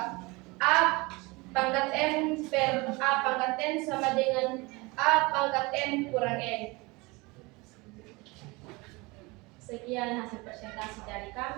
A pangkat N per A pangkat N sama dengan A pangkat N kurang N. Sekian hasil presentasi dari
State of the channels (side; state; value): left; quieter; 24.8 dB